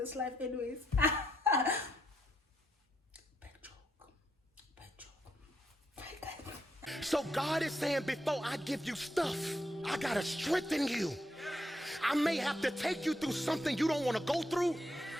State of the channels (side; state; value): both; normal; correlation 0.78